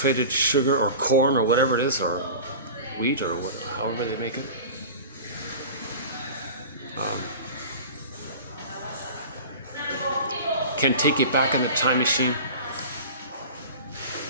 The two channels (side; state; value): both; inverted; correlation -0.35